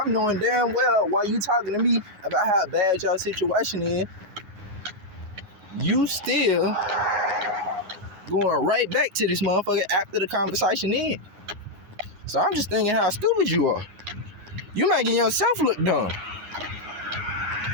I'm knowing damn well why you talking to me about how bad your situation is, you still going right back to this motherfucker after the conversation ends. So I'm just thinking how stupid you are. You making yourself look dumb.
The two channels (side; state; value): left; late; 9.6 ms